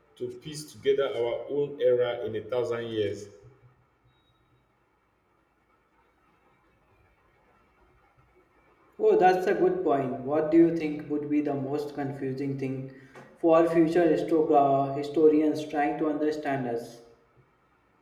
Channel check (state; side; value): identical; both; correlation 1.00